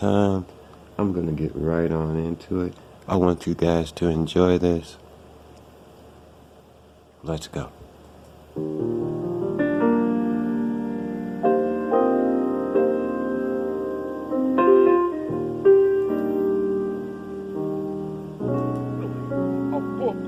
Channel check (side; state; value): both; identical; correlation 1.00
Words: I'm going to get right on into it. I want you guys to enjoy this. Let's go.